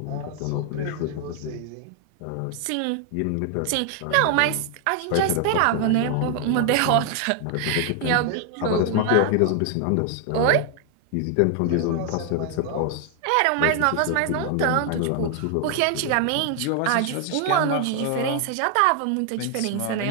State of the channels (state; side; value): different; both; correlation 0.00